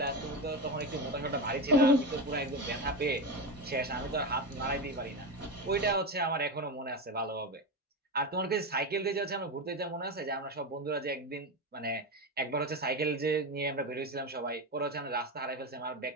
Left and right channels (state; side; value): normal; both; correlation 0.18